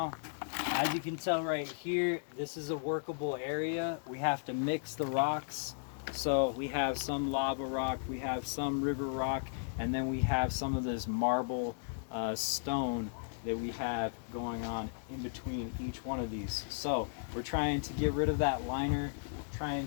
As you can tell right here, this is a workable area. We have to mix the rocks. So we have some lava rock, we have some river rock, and then we have some of this marble stone that we have going on in between each one of these. So we're trying to get rid of that liner, trying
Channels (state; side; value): silent; right; digital silence